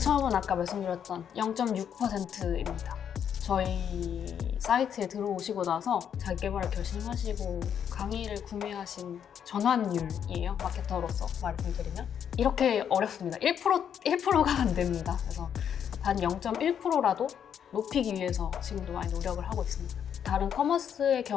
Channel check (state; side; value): quieter; right; 8.5 dB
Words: 아까 말씀드렸던 0.6%입니다. 저희 사이트에 들어오시고 나서 자기개발을 결심하시고 강의를 구매하신 전환율이에요. 마케터로서 말씀드리면 이렇게 어렵습니다. 1%가 안 됩니다. 그래서 단 0.1%라도 높이기 위해서 지금도 많이 노력을 하고 있습니다. 다른 커머스의